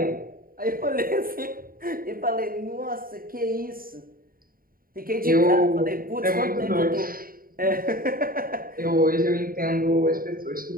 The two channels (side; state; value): left; late; 0.42 ms